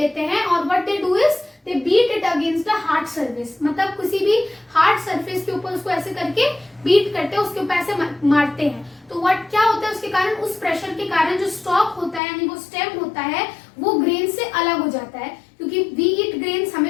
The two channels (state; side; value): drops out; right; at 12.2 s